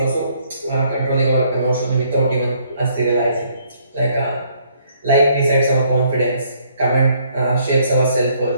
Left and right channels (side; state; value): both; inverted; correlation -0.66